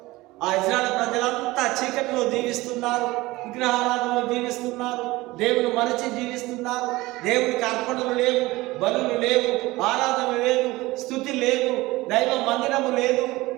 ఆ ఇజ్రాయేల్ ప్రజలంతా చీకటిలో జీవిస్తున్నారు, విగ్రహారాధనలో జీవిస్తున్నారు, దేవుని మరచి జీవిస్తున్నారు. దేవునికి అర్పణలు లేవు, బలులు లేవు, ఆరాధన లేదు, స్తుతి లేదు, దైవ మందిరము లేదు.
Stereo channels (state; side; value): quieter; left; 19.9 dB